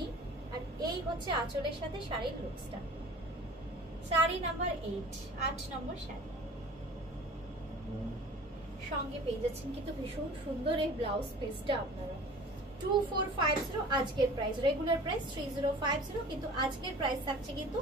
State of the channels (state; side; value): normal; both; correlation 0.43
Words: আর এই হচ্ছে আঁচলের সাথে শাড়ির লুকসটা। শাড়ি নাম্বার 8, 8 নম্বর শাড়ি। সঙ্গে পেয়ে যাচ্ছেন কিন্তু ভীষণ সুন্দর এই ব্লাউজ পিসটা আপনারা। 2450 আজকের প্রাইস। রেগুলার প্রাইস 3050, কিন্তু আজকের প্রাইস থাকছে কিন্তু